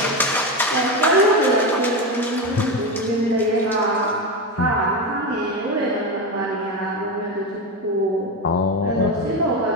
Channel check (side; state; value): both; normal; correlation 0.16